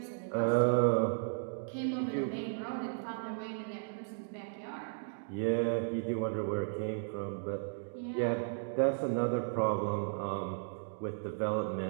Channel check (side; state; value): left; silent; digital silence